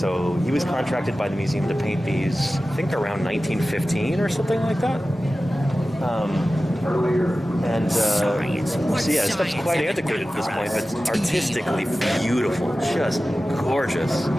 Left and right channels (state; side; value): normal; both; correlation 0.95